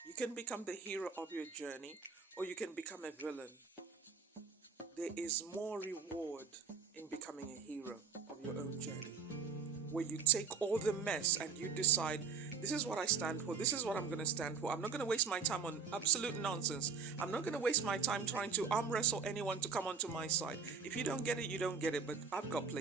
You can become the hero of your journey, or you can become a villain. There is more reward in becoming a hero of your own journey, where you take all the mess and you decide, this is what I stand for, this is what I'm going to stand for. I'm not going to waste my time on absolute nonsense. I'm not going to waste my time trying to arm wrestle anyone to come onto my side. If you don't get it, you don't get it, but I've got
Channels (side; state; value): left; quieter; 5.6 dB